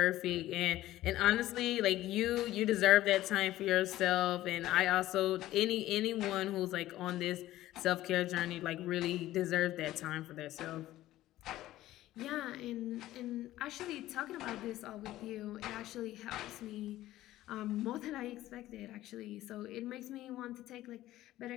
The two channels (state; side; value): quieter; right; 15.1 dB